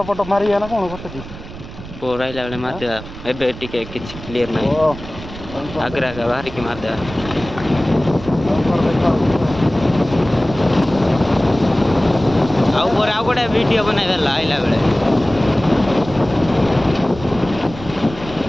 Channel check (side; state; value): right; noise; rumble, 14 dB below the sound